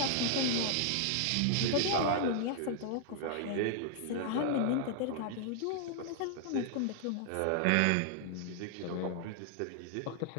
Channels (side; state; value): both; different; correlation -0.01